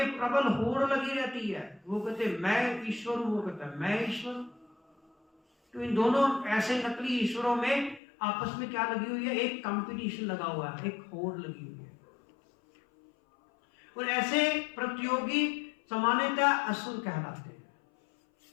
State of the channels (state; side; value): drops out; right; at 8.0 s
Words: प्रबल होड़ लगी रहती है। वो कहते मैं ईश्वर हूं, वो कहता है मैं ईश्वर हूं। तो इन दोनों ऐसे नकली ईश्वरों में आपस में क्या लगी हुई है? एक कंपटीशन लगा हुआ है, एक होड़ लगी हुई है। और ऐसे प्रतियोगी सामान्यतः असुर कहलाते हैं,